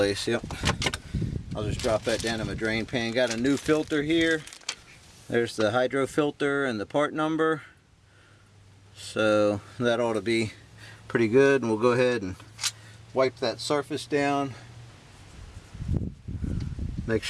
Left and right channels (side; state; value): both; identical; correlation 1.00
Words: Yep. I'll just drop that down in my drain pan. Got a new filter here. There's the hydro filter and the part number. So that ought to be pretty good. And we'll go ahead and wipe that surface down. Make